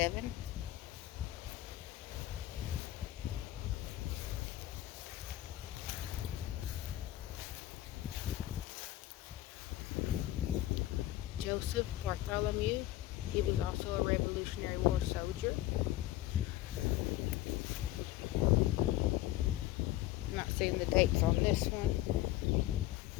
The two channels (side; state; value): right; quieter; 15.2 dB